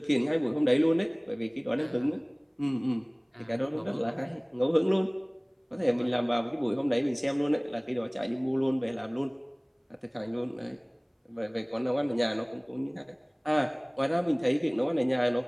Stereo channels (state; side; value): identical; both; correlation 1.00